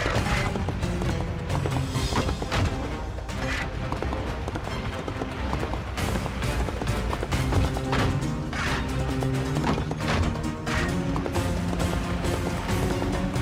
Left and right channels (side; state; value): both; identical; correlation 1.00